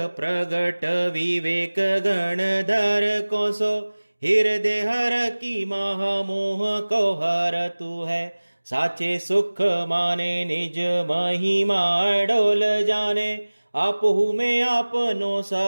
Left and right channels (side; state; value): both; inverted; correlation -1.00